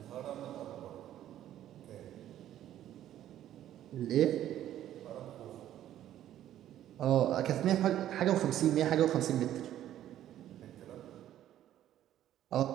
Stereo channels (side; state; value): left; quieter; 12.0 dB